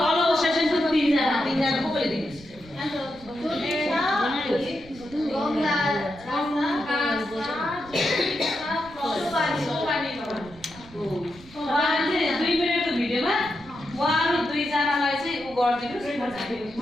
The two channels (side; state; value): right; noise; rumble, 21 dB below the sound